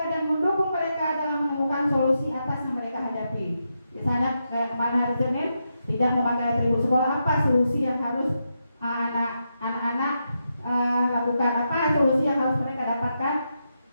dan mendukung mereka dalam menemukan solusi atas yang mereka hadapi. Misalnya kemarin hari Senin tidak memakai atribut sekolah, apa solusi yang harus anak-anak lakukan, apa solusi yang harus mereka dapatkan,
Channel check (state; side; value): inverted; both; correlation -0.85